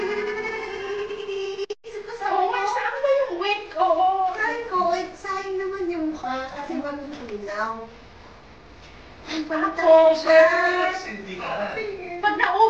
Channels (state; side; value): identical; both; correlation 1.00